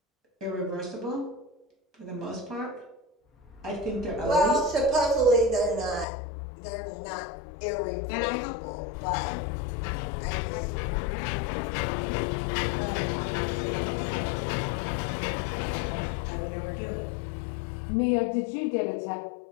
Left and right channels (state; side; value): drops out; right; at 6.1 s